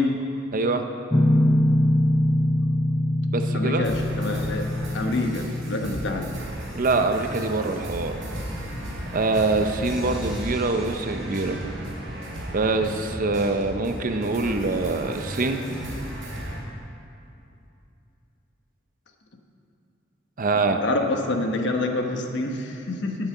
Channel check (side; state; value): both; normal; correlation 0.49